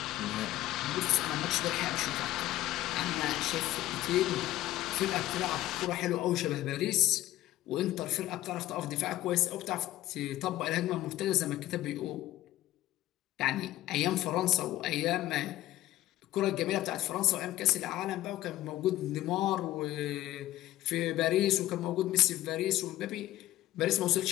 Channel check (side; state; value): right; quieter; 15.2 dB